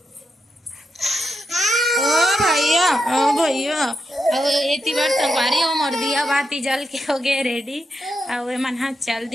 ओ भैया एती बार संगवारी हो मोर दिया बाती जल के हो गए रेडी, और मन हाँ चल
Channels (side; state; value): both; normal; correlation 0.85